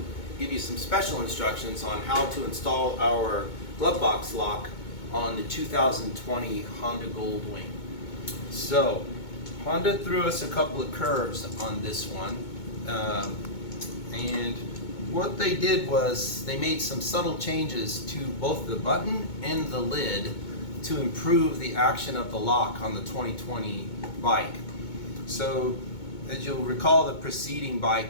give you some special instructions on how to install our Glovebox lock on the 2020 Honda Goldwing. So, Honda threw us a couple of curves on this one, and what they did was they made some subtle changes to both the button and the lid to improve the action of the lock on the 2020 bike. So, as you'll recall, the preceding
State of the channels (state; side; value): late; right; 2.2 ms